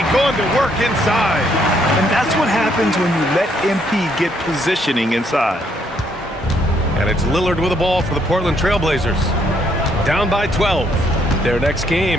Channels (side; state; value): both; normal; correlation 0.71